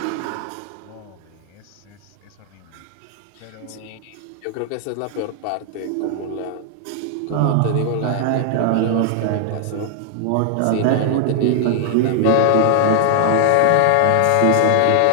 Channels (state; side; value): different; both; correlation 0.00